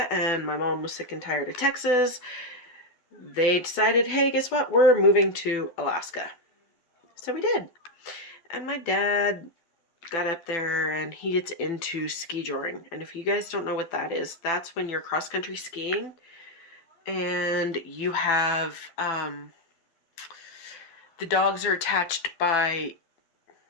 and my mom was sick and tired of Texas, they decided, hey, guess what? We're moving to Alaska. So we did. And my dad got up there and he gets into ski joring. And if you guys don't know what that is, that's when you're cross-country skiing and you have, the dogs are attached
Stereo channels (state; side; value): late; right; 12 ms